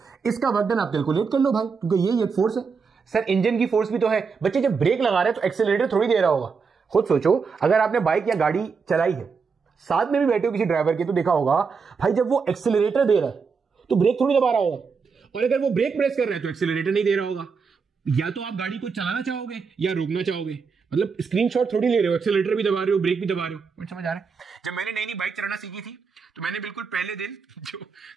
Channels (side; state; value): left; quieter; 5.4 dB